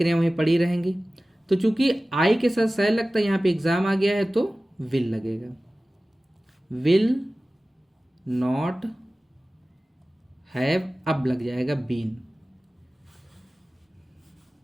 वहीं पड़ी रहेंगी। तो चूंकि आई के साथ सह लगता है, यहाँ पे एग्जाम आ गया है तो विल लगेगा, विल नॉट हैव, अब लग जाएगा been,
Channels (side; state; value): both; normal; correlation 0.97